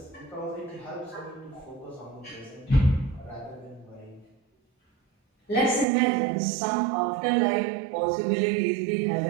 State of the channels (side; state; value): left; drops out; at 5.9 s